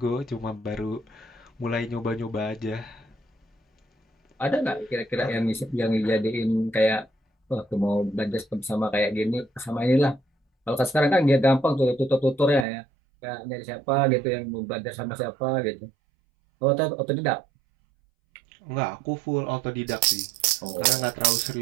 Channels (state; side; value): drops out; left; at 12.7 s